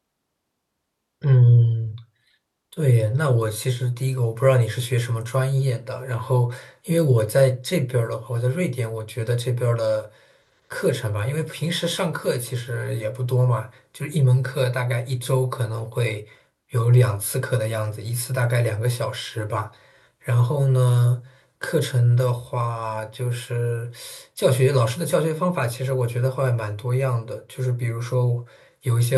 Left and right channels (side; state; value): both; identical; correlation 1.00